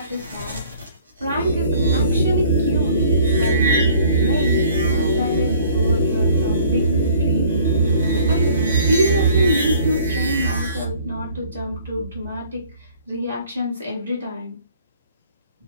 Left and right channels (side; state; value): both; inverted; correlation -0.54